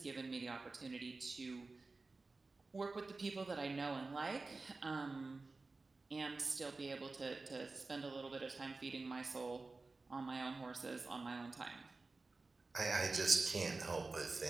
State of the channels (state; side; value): quieter; left; 3.6 dB